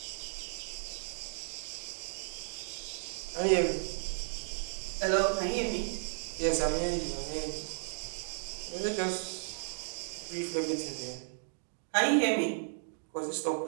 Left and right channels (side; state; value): left; silent; digital silence